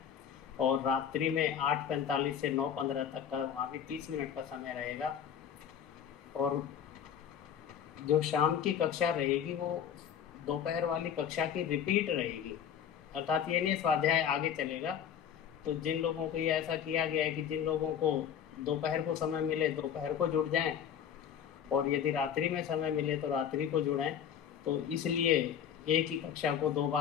और रात्रि में 8:45 से 9:15 तक का वहाँ भी 30 मिनट का समय रहेगा। और जो शाम की कक्षा रहेगी वो दोपहर वाली कक्षा की रिपीट रहेगी, अर्थात ये नहीं स्वाध्याय आगे चलेगा। तो जिन लोगों को ये ऐसा किया गया है कि जिन लोगों को दोपहर को समय मिले दोपहर को जुड़ जाएं, और यदि रात्रि में समय मिले तो रात्रि को जुड़ें। तो इसलिए एक ही कक्षा को 2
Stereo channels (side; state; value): right; quieter; 8.6 dB